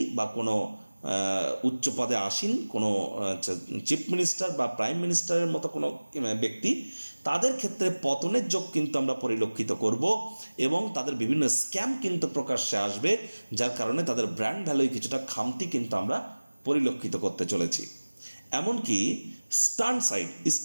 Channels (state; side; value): inverted; both; correlation -1.00